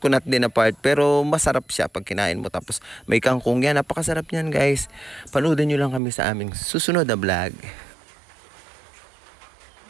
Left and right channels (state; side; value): drops out; left; at 6.0 s